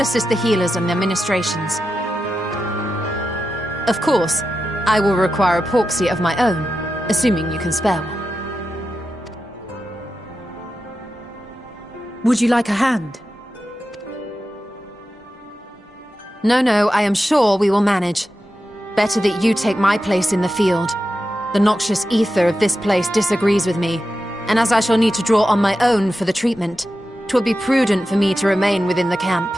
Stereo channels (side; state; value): both; normal; correlation 0.91